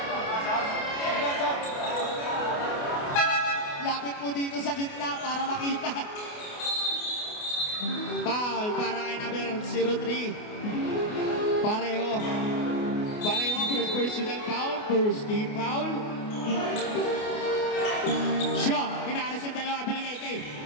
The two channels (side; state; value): right; late; 28 ms